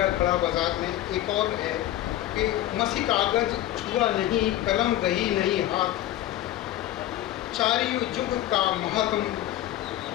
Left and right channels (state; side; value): quieter; right; 13.7 dB